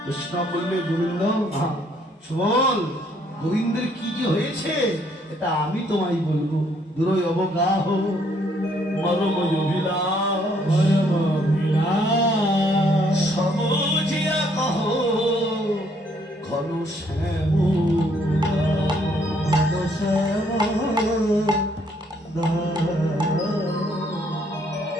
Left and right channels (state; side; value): normal; both; correlation 0.67